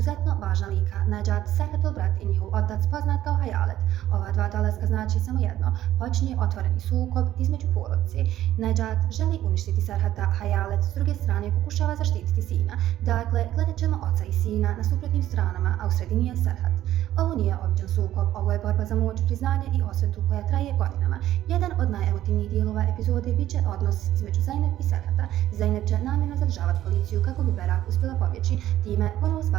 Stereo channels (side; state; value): left; quieter; 13.1 dB